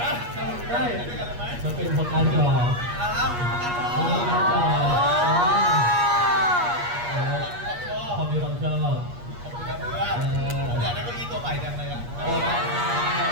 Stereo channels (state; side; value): late; left; 8.4 ms